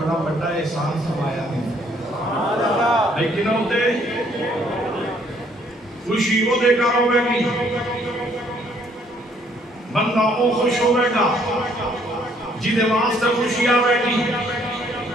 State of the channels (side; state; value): both; normal; correlation 0.64